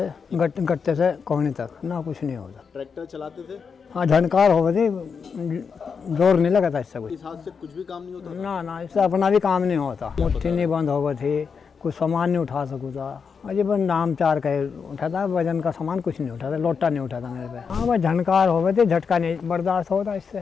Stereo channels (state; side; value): quieter; right; 5.9 dB